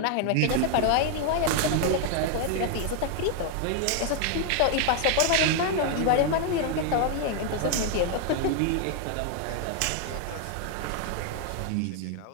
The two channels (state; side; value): different; both; correlation 0.00